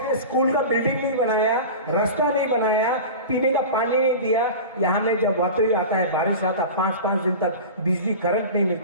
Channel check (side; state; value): both; inverted; correlation -0.32